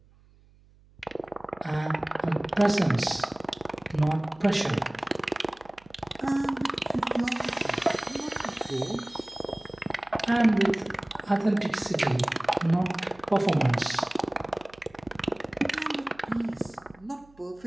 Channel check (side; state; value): right; noise; hum, 28 dB below the sound